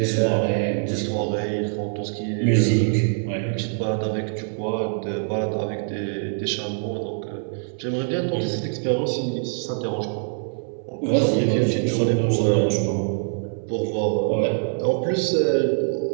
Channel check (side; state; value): left; silent; digital silence